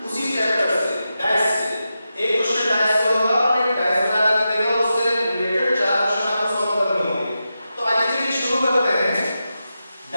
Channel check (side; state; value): both; inverted; correlation -0.90